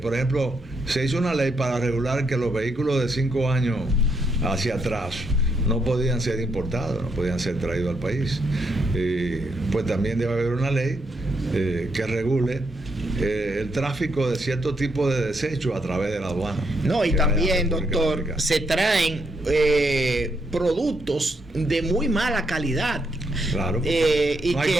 ejemplo, se hizo una ley para regular que los vehículos de 5 años hacia atrás no podían ser importados, no podían ser traídos al país. Pues también debe haber una ley que regule el tráfico de cierto tipo de desechos a través de la aduana. No, y también, doctor, se traen productos de muy mala calidad. Claro, y no hay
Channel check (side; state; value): both; normal; correlation 0.77